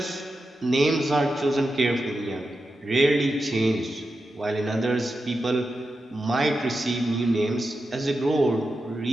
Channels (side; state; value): both; normal; correlation 0.90